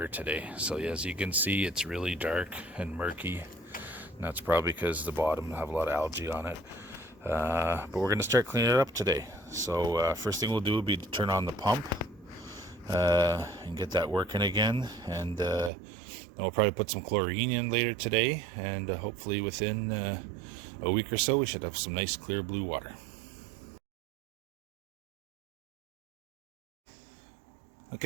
today. So as you can see, it's really dark and murky. And that's probably because the bottom have a lot of algae on it. But we're going to start cleaning it up today. So first thing we'll do will be to turn on the pump and get that working again. And then we'll probably put some chlorine in later today. And hopefully within a week or so, we should have some nice clear blue water.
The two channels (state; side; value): drops out; left; at 15.7 s